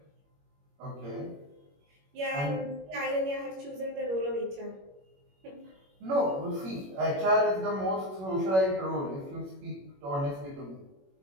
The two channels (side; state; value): left; late; 21 ms